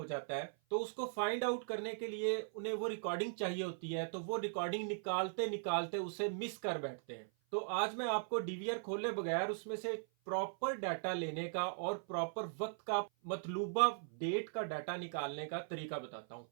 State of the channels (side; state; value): left; silent; 51 dB below the other